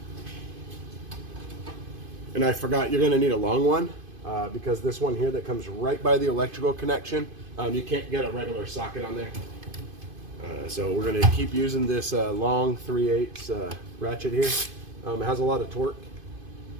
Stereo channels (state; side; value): late; left; 2.5 ms